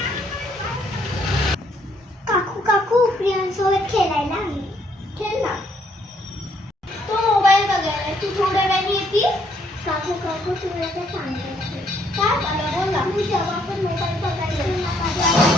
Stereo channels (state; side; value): normal; both; correlation 0.69